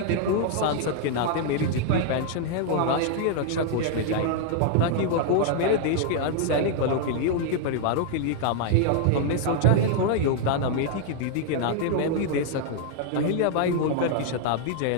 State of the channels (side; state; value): both; different; correlation 0.00